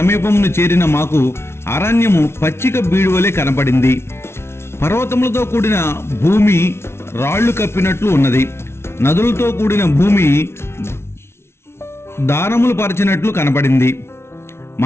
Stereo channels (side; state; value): right; late; 0.12 ms